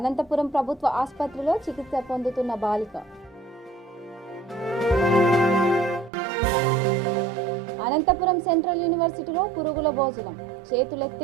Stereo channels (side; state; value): left; drops out; at 6.1 s